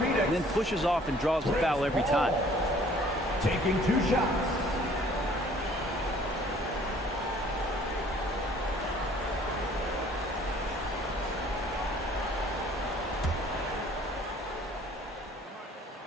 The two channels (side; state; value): both; normal; correlation 0.56